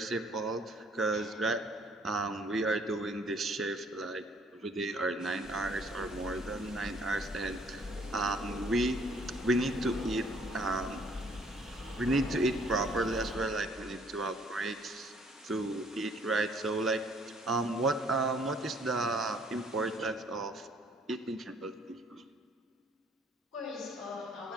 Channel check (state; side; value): normal; both; correlation 0.61